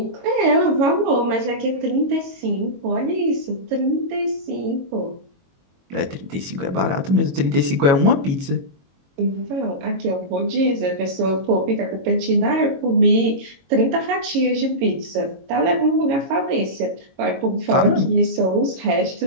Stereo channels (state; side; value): late; left; 22 ms